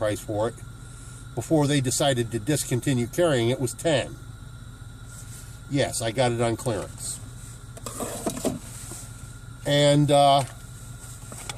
for it, before they decided to discontinue carrying it, was 10. Yes, I got it on clearance. And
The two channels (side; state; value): both; identical; correlation 1.00